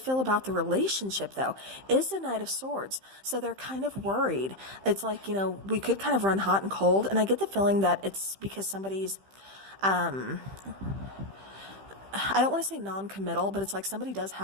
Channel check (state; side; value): late; left; 15 ms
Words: about the relationship, though, is the Knight of Swords. So they're kind of worried. It's like, we could kind of run hot and cold. And I get the feeling that it's because somebody's, I don't want to say non-committal, but it's like somebody does